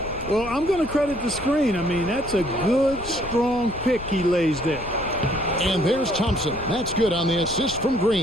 Well, I'm going to credit the screen. I mean, that's a good, strong pick he lays there. And there's Thompson. That's good on the assist from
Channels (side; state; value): left; noise; rumble, 14 dB below the sound